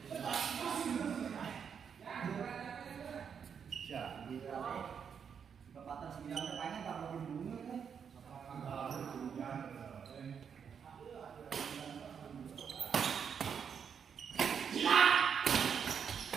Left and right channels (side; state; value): left; quieter; 7.1 dB